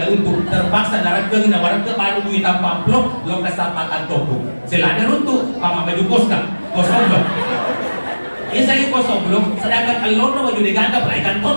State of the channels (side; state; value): both; inverted; correlation -1.00